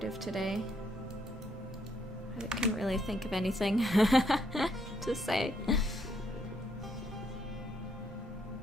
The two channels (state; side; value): normal; both; correlation 0.73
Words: today. I couldn't really think of anything to say.